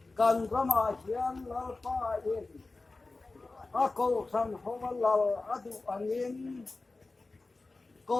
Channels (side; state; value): right; quieter; 3.5 dB